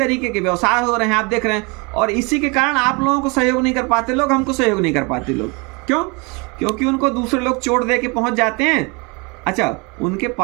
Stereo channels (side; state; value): left; quieter; 29.5 dB